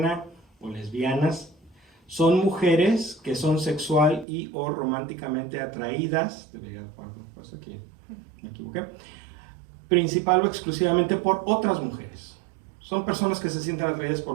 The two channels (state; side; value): drops out; left; at 4.2 s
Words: o lesbianas son mujeres que son sexual y o románticamente atraídas, debería poner aquí, me equivoqué, principal o exclusivamente por otras mujeres. Son personas que se sienten atraídas